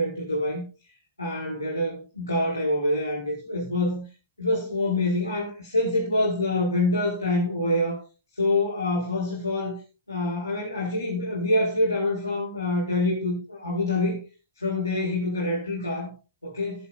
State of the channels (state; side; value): inverted; both; correlation -0.37